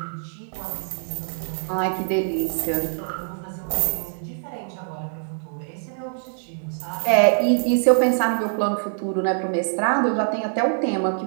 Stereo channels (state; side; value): silent; left; digital silence